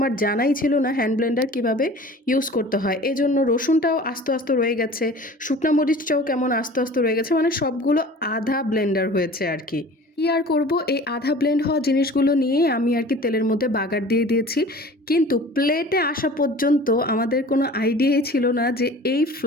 জানাই ছিল না হ্যান্ড ব্লেন্ডার কীভাবে ইউজ করতে হয়। এজন্য রসুনটাও আস্তে আস্তে রয়ে গেছে, শুকনা মরিচটাও কেমন আস্তে আস্তে রয়ে গেছে, মানে সবগুলো আধা ব্লেন্ডার হয়েছে আর কি। কি আর করব, এই আধা ব্লেন্ড হওয়া জিনিসগুলো নিয়ে আমি আর কি তেলের মধ্যে বাগার দিয়ে দিয়েছি। কিন্তু প্লেটে আসা পর্যন্ত আমাদের কোনো আইডিয়াই ছিল না যে এই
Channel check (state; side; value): normal; both; correlation 0.43